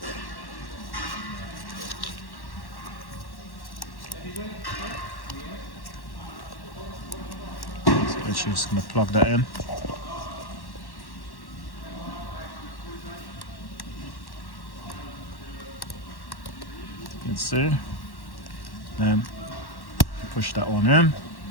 just going to plug that in. You can see, then push that one in.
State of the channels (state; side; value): late; right; 1.1 ms